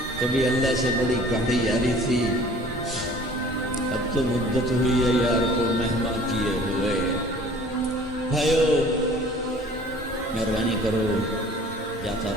کبھی اللہ سے بڑی گاڑی یاری تھی، اب تو مدت ہوئی ہے یار کو مہمان کیے ہوئے۔ بھائیو مہربانی کرو، جاتا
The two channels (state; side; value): normal; both; correlation 0.49